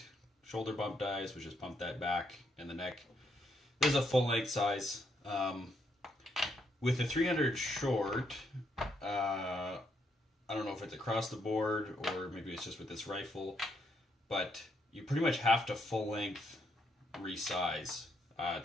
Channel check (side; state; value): both; normal; correlation 0.75